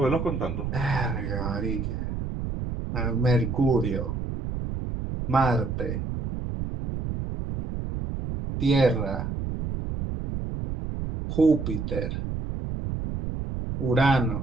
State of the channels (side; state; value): right; noise; rumble, 4 dB below the sound